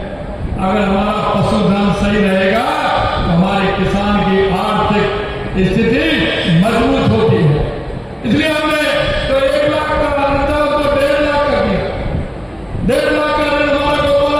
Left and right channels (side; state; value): both; identical; correlation 1.00